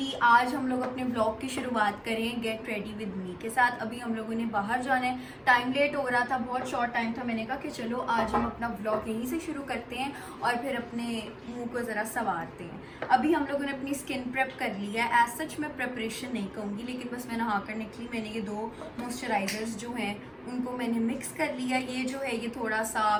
आज हम लोग अपने ब्लॉग की शुरुआत करें गेट रेडी विद मी के साथ। अभी हम लोगों ने बाहर जाना है, टाइम लेट हो रहा था, बहुत शॉर्ट टाइम था। मैंने कहा कि चलो आज हम अपना ब्लॉग यहीं से शुरू करते हैं और फिर अपने मुंह को ज़रा संवारते हैं। अभी हम लोगों ने अपनी स्किन प्रेप कर ली है। एज सच मैं प्रेपरेशन नहीं कहूँगी, लेकिन बस मैं नहा कर निकली। मैंने ये 2 मॉइस्चराइजर्स जो हैं उनको मैंने मिक्स कर लिया। ये जो है ये थोड़ा सा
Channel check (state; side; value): identical; both; correlation 1.00